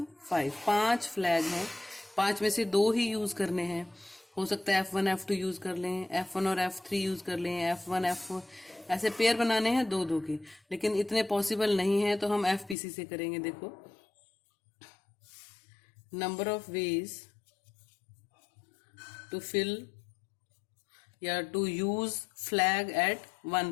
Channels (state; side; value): drops out; right; at 12.8 s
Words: 5 फ्लैग हैं। 5 में से 2 ही यूज करने हैं। हो सकता है F1 F2 यूज कर लें, F1 और F3 यूज कर लें, F1 F4, ऐसे पेयर बनाने हैं 2-2 के, लेकिन इतने पॉसिबल नहीं है तो हम एफपीसी से करेंगे। देखो, number of ways to fill या to use flag at